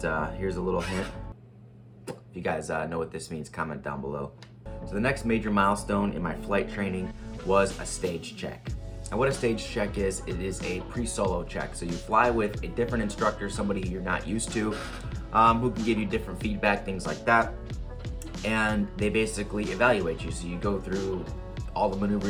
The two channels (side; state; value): both; identical; correlation 1.00